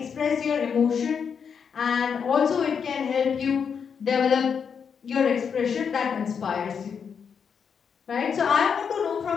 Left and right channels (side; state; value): right; quieter; 6.7 dB